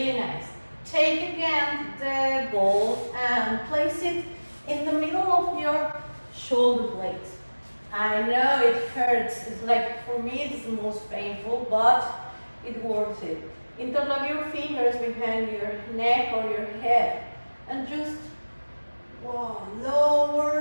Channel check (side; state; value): both; inverted; correlation -1.00